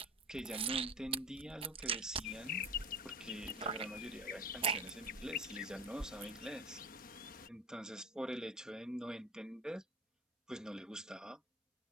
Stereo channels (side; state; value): both; normal; correlation 0.33